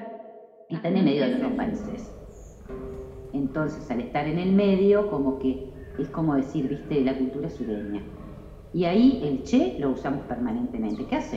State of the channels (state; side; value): identical; both; correlation 1.00